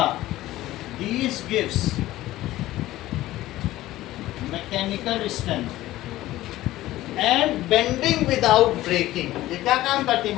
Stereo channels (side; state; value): right; quieter; 15.9 dB